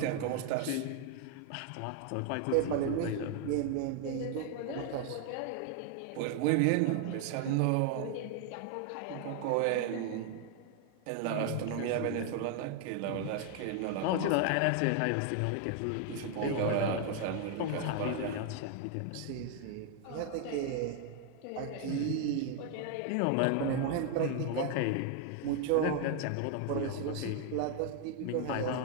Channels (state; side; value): different; both; correlation 0.00